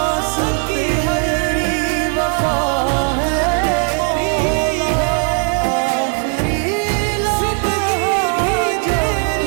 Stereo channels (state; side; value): quieter; left; 39.9 dB